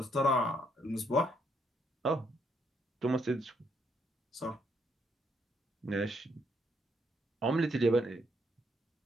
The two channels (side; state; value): both; normal; correlation 0.73